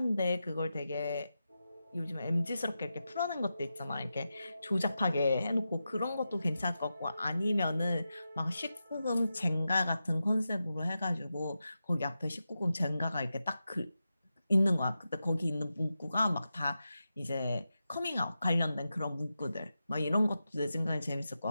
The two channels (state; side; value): inverted; both; correlation -0.90